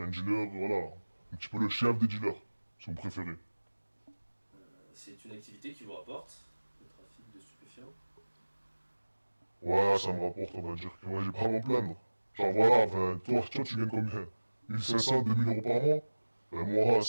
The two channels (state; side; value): inverted; both; correlation -1.00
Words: un dealer, voilà, un petit peu le chef des dealers, si vous préférez. C'est une activité qui vous rapporte, le trafic de stupéfiants? Ouais, ça me rapporte, on va dire que j'ai pas à m'en plaindre. Genre voilà, toi tu gagnes combien? 1500, 2000 euros par mois? Moi,